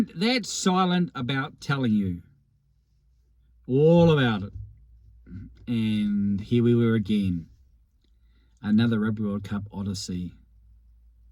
that silent about telling you all about it. And here we were again. Another Rugby World Cup odyssey.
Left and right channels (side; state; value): both; identical; correlation 1.00